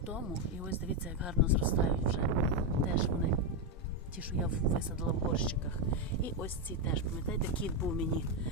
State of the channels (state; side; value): normal; both; correlation 0.05